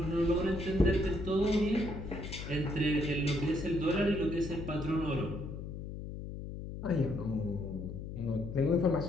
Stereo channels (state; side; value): noise; left; hum, 8 dB below the sound